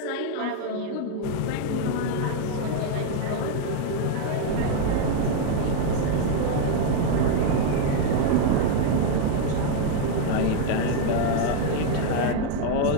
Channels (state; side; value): different; both; correlation 0.00